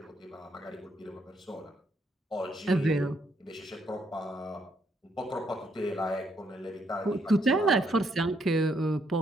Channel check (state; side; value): normal; both; correlation 0.73